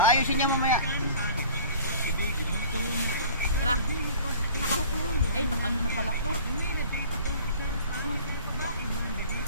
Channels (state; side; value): inverted; both; correlation -0.45